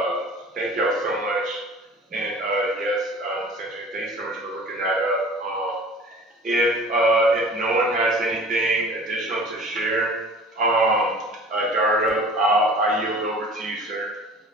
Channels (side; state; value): both; normal; correlation 0.44